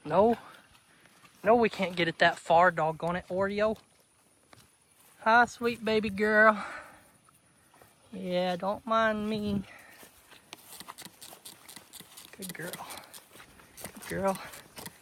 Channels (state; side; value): identical; both; correlation 1.00